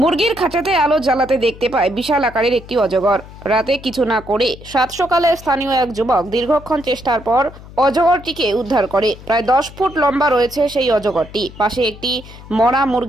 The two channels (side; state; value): left; noise; hum, 18 dB below the sound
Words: মুরগির খাঁচাতে আলো জ্বালাতে দেখতে পায় বিশাল আকারের একটি অজগর। রাতে কিছু না করে সাত সকালে স্থানীয় এক যুবক দীর্ঘক্ষণ চেষ্টার পর অজগরটিকে উদ্ধার করে। প্রায় 10 ফুট লম্বা রয়েছে সেই অজগরটি। পাশে একটি মরা